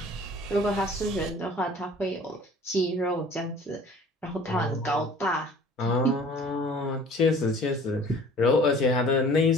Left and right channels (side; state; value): both; normal; correlation 0.49